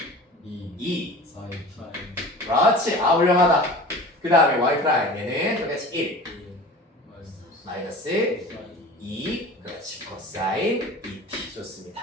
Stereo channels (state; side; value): normal; both; correlation 0.39